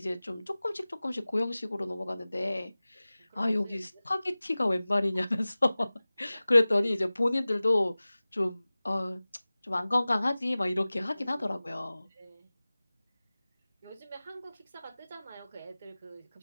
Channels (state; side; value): inverted; both; correlation -0.98